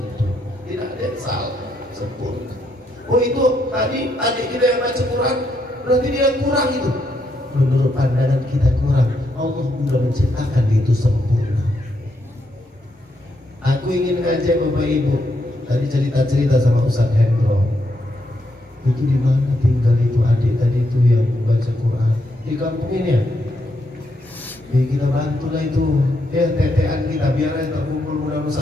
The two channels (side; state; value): both; normal; correlation 0.78